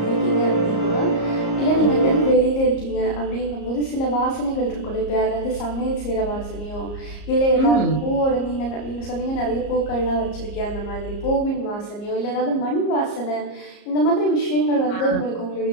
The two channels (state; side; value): late; right; 34 ms